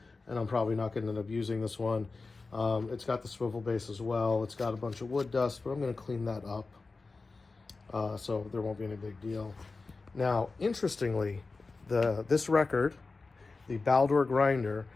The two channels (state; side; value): quieter; right; 3.9 dB